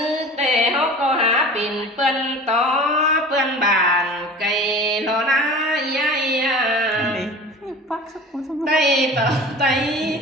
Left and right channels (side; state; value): both; normal; correlation 0.38